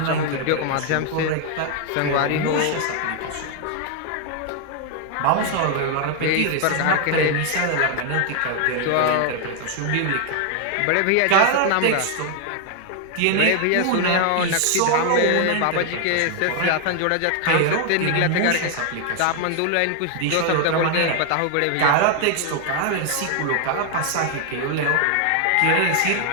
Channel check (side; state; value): both; different; correlation 0.00